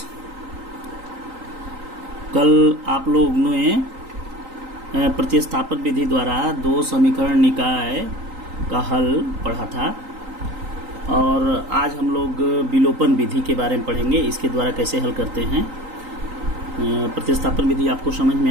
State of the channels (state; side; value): late; left; 3.9 ms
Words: कल आप लोग ने प्रतिस्थापन विधि द्वारा दो समीकरण निकाय का हल पढ़ा था और आज हम लोग विलोपन विधि के बारे में पढ़ेंगे। इसके द्वारा कैसे हल करते हैं। प्रतिस्थापन विधि आपको समझ में